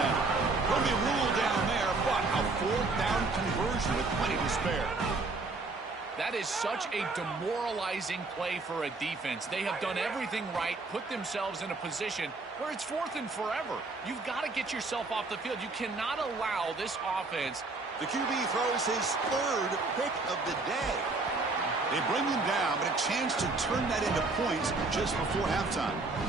Will be ruled down there, but a 4th down conversion with plenty to spare. That is such a demoralizing play for a defense. They have done everything right, put themselves in a position where it's 4th and forever. You've got to get yourself off the field. You cannot allow this offense. The QB throws his 3rd pick of the day. They bring him down, but a chance to turn that into points just before halftime.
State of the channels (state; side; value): quieter; left; 3.6 dB